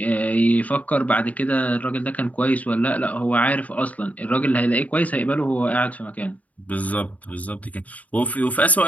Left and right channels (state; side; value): late; right; 0.071 ms